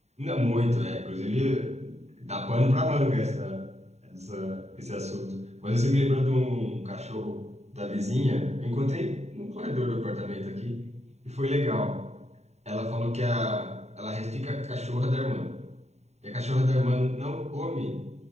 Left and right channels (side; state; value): left; late; 0.32 ms